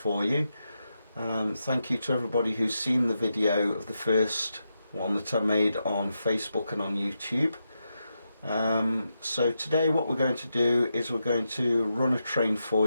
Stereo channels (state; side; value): inverted; both; correlation -0.86